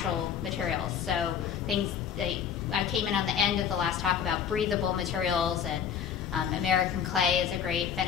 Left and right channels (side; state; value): right; quieter; 8.1 dB